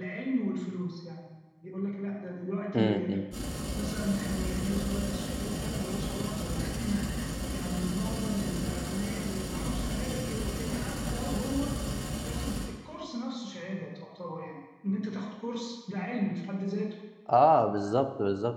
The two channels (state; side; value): identical; both; correlation 1.00